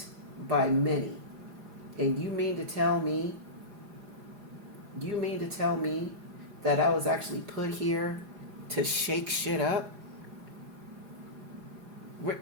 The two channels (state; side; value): late; left; 4.9 ms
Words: by many. And you mean to tell me that I was actually put here to shake shit up? Wait,